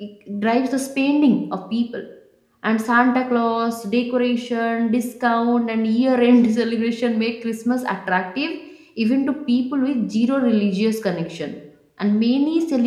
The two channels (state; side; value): identical; both; correlation 1.00